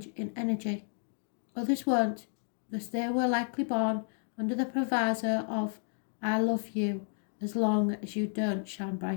in energy. Others won't, because they were likely born under the proviso of, I love you as long as you don't shine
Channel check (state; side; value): silent; right; 57 dB below the other